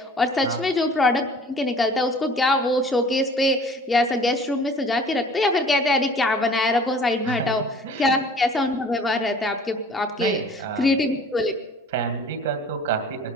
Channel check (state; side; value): normal; both; correlation 0.49